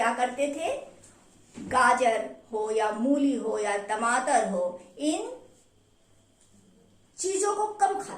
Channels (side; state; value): both; identical; correlation 1.00